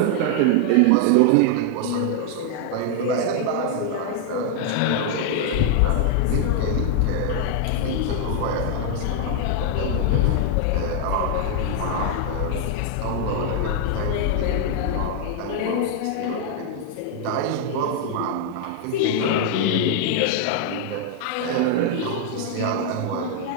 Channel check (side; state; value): both; different; correlation 0.00